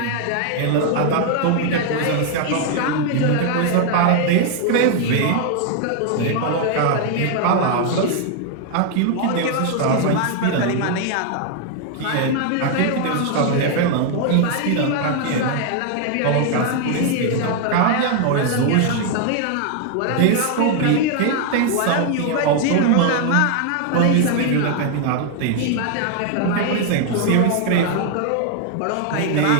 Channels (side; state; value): both; different; correlation 0.00